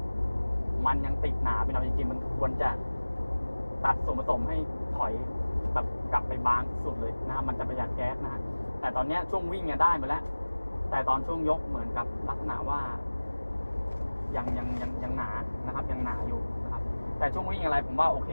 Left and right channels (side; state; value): both; inverted; correlation -1.00